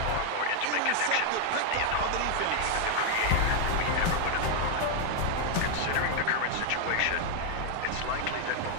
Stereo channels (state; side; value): different; both; correlation 0.00